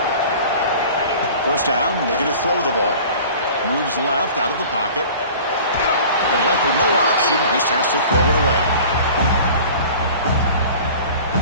First down, looking to throw the ball. Moves left out of the pocket. And left with no option, just has to throw it away.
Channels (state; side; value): inverted; both; correlation -0.43